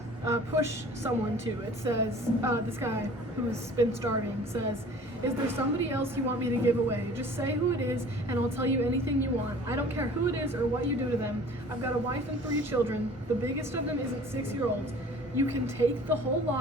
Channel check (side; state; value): both; normal; correlation 0.47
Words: push someone to. It says, this guy who's been starving says, "Is there somebody else you want me to give away? Just say who it is, and I'll tell you anything you want. I don't care who it is or what you do to them. I've got a wife and 3 children. The biggest of them isn't 6-year-olds. You can take the whole